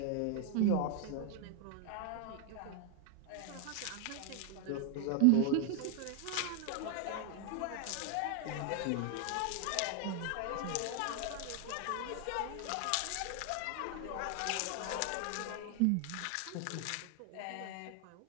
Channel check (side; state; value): both; different; correlation 0.00